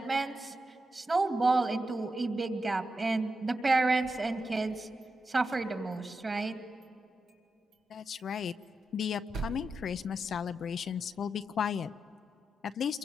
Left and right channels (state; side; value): normal; both; correlation 0.87